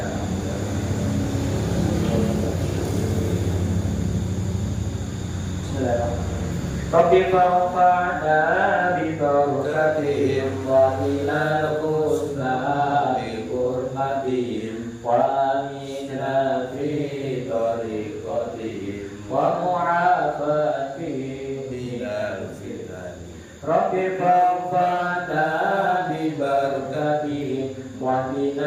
Rabbi fa'fa'na bi barakatihim wa ilal husna bi hurmatihim wa aminna fi tariqatihim wa mu'afatihim bi Rabbi fa'fana bi barakatihim wa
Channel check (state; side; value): identical; both; correlation 1.00